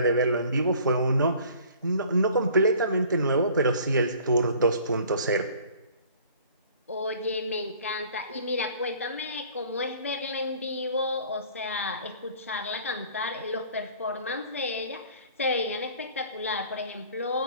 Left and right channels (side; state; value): both; inverted; correlation -0.51